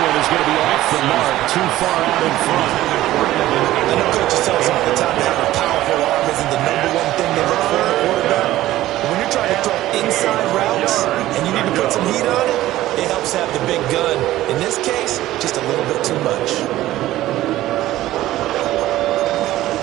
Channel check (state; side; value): quieter; left; 15.2 dB